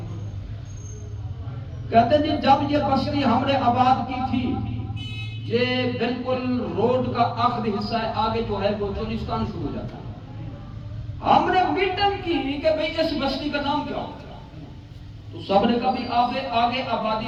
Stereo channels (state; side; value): identical; both; correlation 1.00